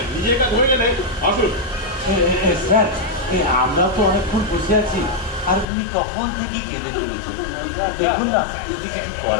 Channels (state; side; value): drops out; right; at 5.7 s